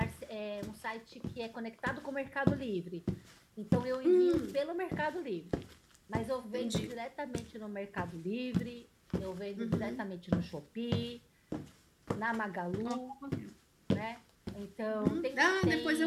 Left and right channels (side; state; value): both; identical; correlation 1.00